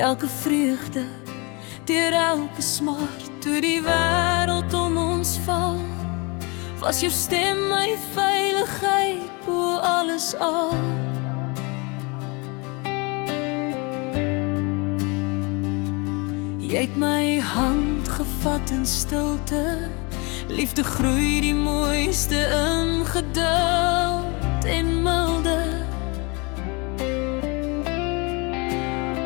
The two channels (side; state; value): right; quieter; 29.3 dB